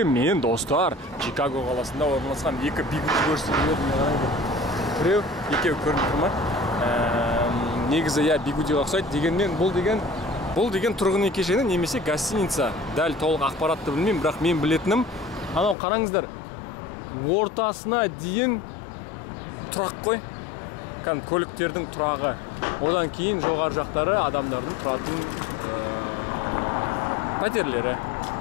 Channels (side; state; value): right; drops out; at 15.8 s